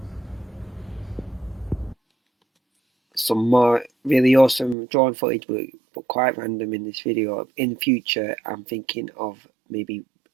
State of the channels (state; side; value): drops out; left; at 4.8 s